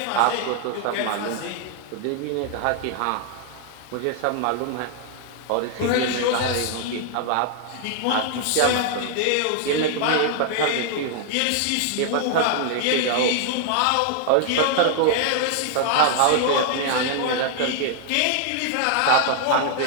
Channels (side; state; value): both; different; correlation 0.00